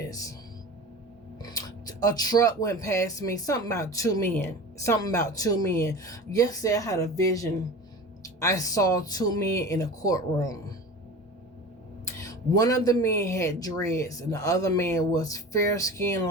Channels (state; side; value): normal; both; correlation 0.34